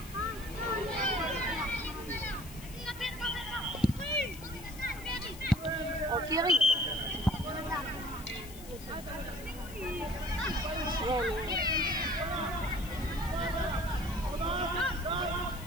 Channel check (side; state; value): left; noise; hiss, 17 dB below the sound